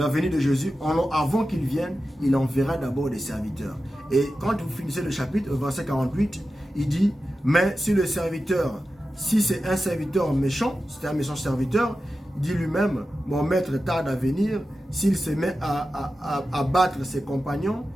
venue de Jésus. Avant qu'il vienne, il enverra d'abord des serviteurs. Et quand vous finissez le chapitre, verset 48, il dit, mais si le serviteur, si c'est un serviteur méchant, c'est un méchant serviteur, il dit lui-même, mon maître tarde à venir, s'il se met à battre ses compagnons,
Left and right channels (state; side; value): normal; both; correlation 0.92